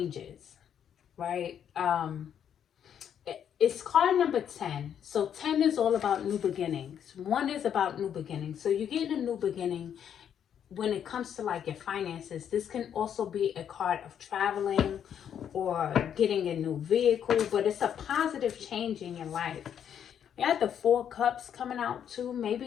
right? It's card number 10. So 10 is all about new beginnings. 1 is about new beginnings. So you're getting a new beginning when it comes to like your finances. This can also be a card of traveling or getting a new vehicle, but it's a positive change in your life. You have the 4 cups coming out too.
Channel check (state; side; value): quieter; right; 8.9 dB